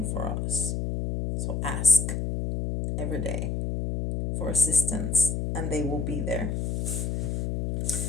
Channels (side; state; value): left; noise; hum, 1 dB below the sound